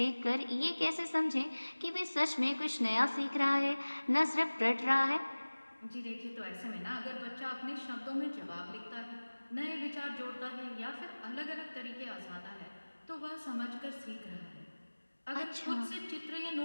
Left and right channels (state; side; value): inverted; both; correlation -1.00